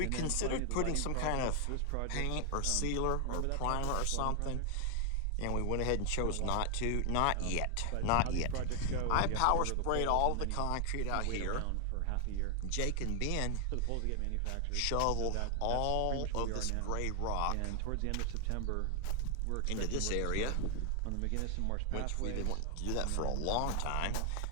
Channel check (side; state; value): both; different; correlation 0.00